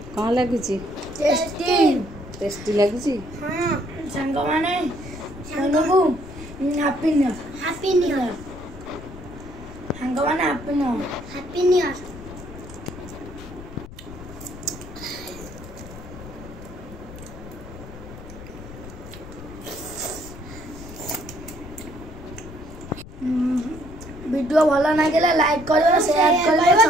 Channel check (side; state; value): left; noise; rumble, 14 dB below the sound